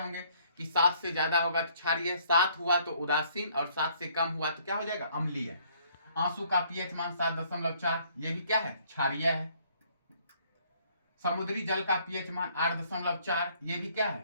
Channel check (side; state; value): both; inverted; correlation -0.63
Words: कि 7 से ज्यादा होगा तो क्षारीय, 7 हुआ तो उदासीन, और 7 से कम हुआ तो क्या हो जाएगा? अम्लीय। आंसू का पीएच मान 7.4, ये भी क्या है? क्षारीय है। समुद्री जल का पीएच मान 8.4, ये भी क्या है?